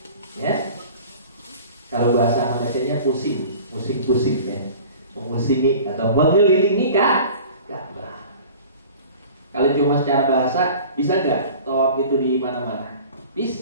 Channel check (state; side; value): inverted; both; correlation -0.43